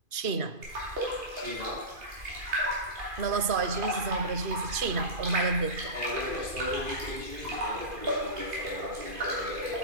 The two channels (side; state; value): left; late; 2.5 ms